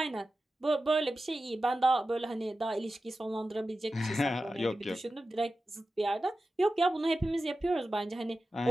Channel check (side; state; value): both; normal; correlation 0.93